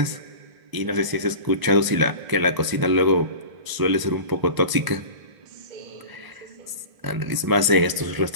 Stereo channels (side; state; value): left; late; 1.0 ms